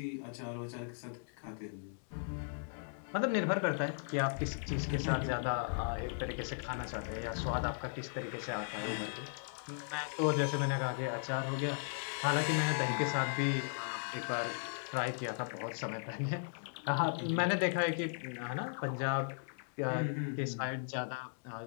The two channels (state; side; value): silent; right; digital silence